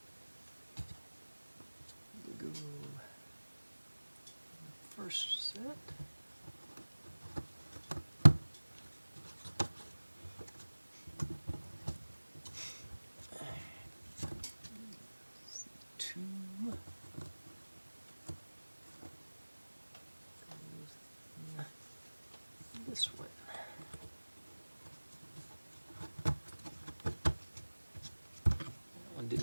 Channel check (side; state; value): both; inverted; correlation -1.00